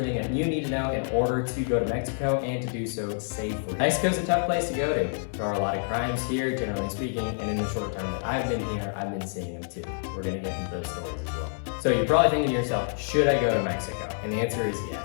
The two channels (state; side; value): silent; right; 60 dB below the other